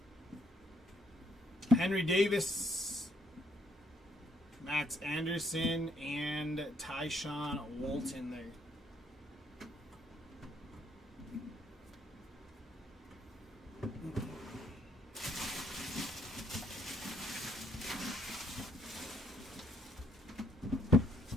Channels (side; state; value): both; normal; correlation 0.70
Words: Henry Davis, Max Anderson, and Tyshawn Walton there.